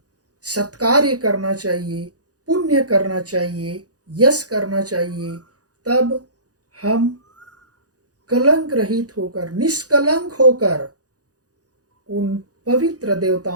सत्कार्य करना चाहिए, पुण्य करना चाहिए, यश करना चाहिए। तब हम कलंक रहित होकर, निष्कलंक होकर उन पवित्र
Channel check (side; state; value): left; late; 0.67 ms